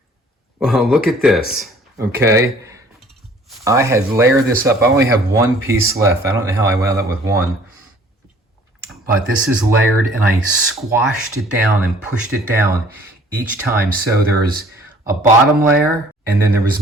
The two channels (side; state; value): both; normal; correlation 0.54